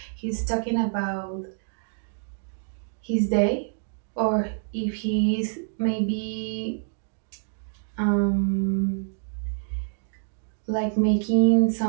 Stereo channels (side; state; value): left; silent; digital silence